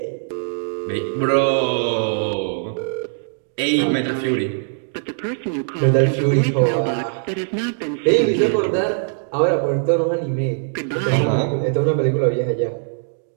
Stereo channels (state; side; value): silent; left; digital silence